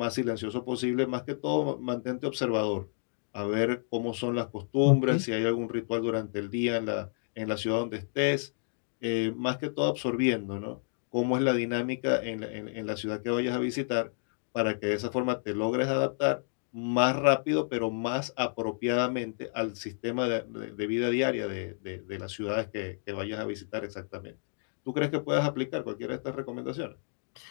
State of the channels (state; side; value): silent; right; digital silence